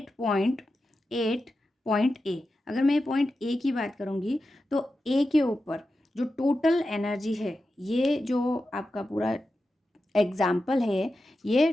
पॉइंट ए, अगर मैं पॉइंट ए की बात करूँगी तो ए के ऊपर जो टोटल एनर्जी है, ये जो आपका पूरा एग्जाम्पल है, ये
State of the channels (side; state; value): both; normal; correlation 0.91